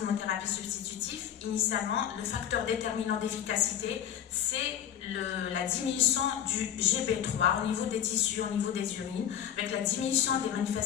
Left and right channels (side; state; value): right; quieter; 10.0 dB